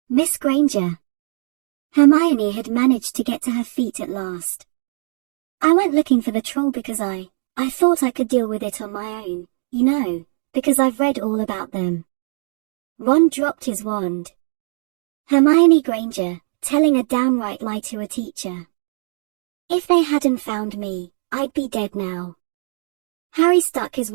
"Miss Granger." Hermione had managed to get to her feet at last. "I went looking for the troll because I thought I could deal with it on my own, you know, because I've read all about them." Ron dropped his wand. Hermione Granger, telling a downright lie to a teacher. "If they hadn't found me, I'd be dead now." Harry stuck his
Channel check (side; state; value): left; silent; 59 dB below the other